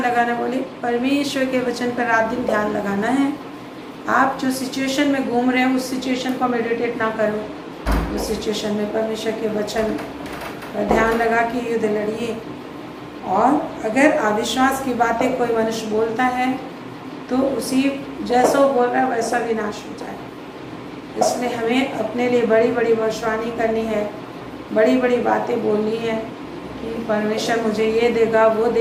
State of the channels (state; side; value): identical; both; correlation 1.00